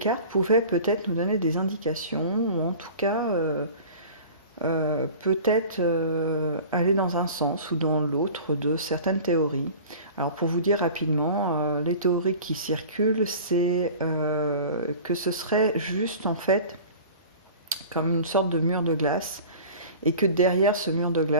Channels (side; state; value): both; inverted; correlation -0.40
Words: pouvaient peut-être nous donner des indications, ou en tout cas peut-être aller dans un sens ou dans l'autre de certaines théories. Alors pour vous dire rapidement, les théories qui circulent, c'est que ce serait juste en fait comme une sorte de mur de glace et que derrière ce mur de